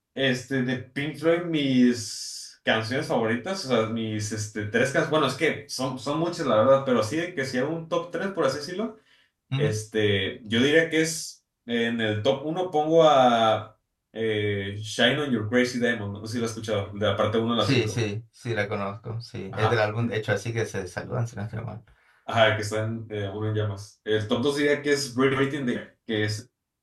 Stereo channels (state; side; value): identical; both; correlation 1.00